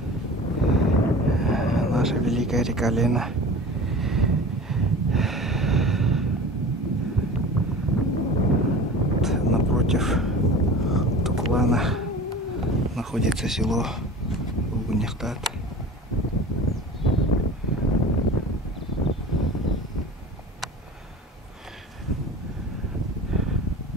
Наша великая река Лена. Напротив Тукулана находится село Гунихтат.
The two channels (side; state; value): both; normal; correlation 0.38